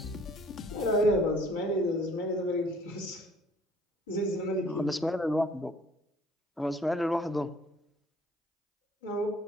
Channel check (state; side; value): normal; both; correlation 0.56